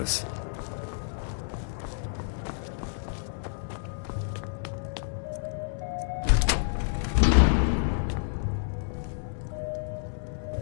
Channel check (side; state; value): right; silent; 56 dB below the other